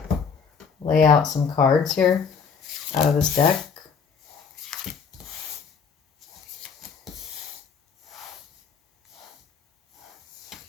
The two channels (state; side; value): quieter; right; 5.9 dB